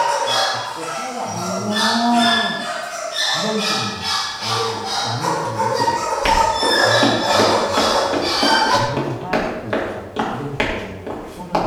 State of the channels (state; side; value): identical; both; correlation 1.00